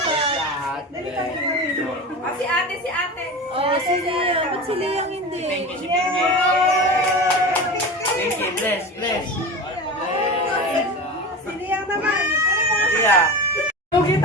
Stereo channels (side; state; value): both; normal; correlation 0.28